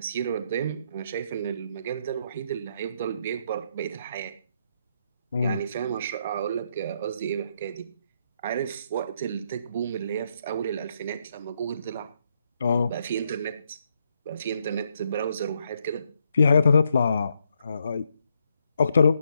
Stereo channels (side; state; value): both; inverted; correlation -0.76